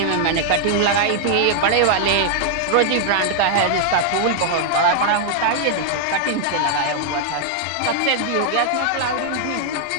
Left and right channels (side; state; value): both; different; correlation 0.00